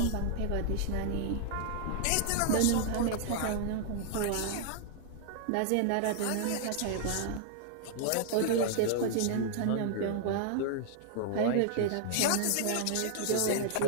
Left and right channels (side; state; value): both; different; correlation -0.01